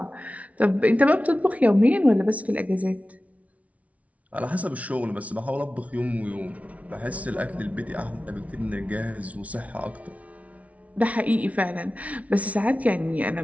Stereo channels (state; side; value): late; left; 0.067 ms